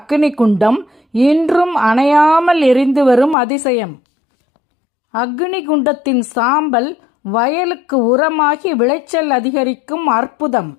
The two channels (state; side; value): drops out; right; at 3.4 s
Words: குண்டம் இன்றும் அணையாமல் எரிந்து வரும் அதிசயம். அக்னி குண்டத்தின் சாம்பல் வயலுக்கு உரமாகி விளைச்சல் அதிகரிக்கும் அற்புதம்.